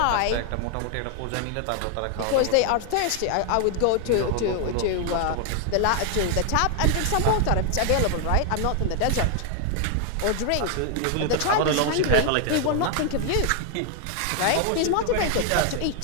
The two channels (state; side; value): different; both; correlation 0.00